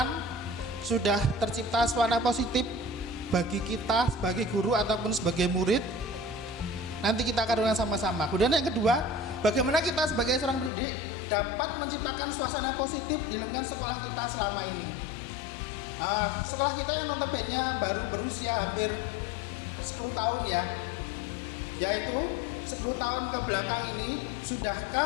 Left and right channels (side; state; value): right; drops out; at 10.7 s